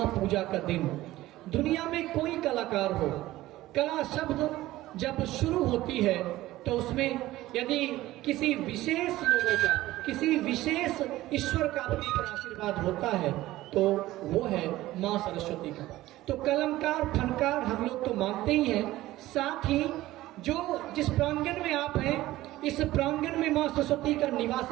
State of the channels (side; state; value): left; quieter; 16.4 dB